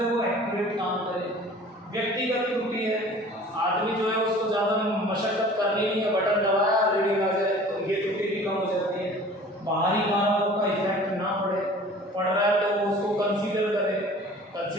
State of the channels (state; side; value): normal; both; correlation 0.46